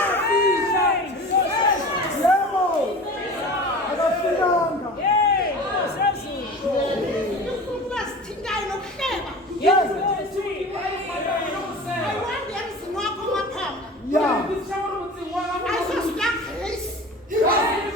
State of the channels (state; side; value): normal; both; correlation 0.37